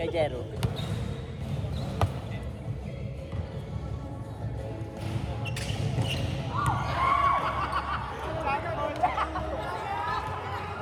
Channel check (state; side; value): identical; both; correlation 1.00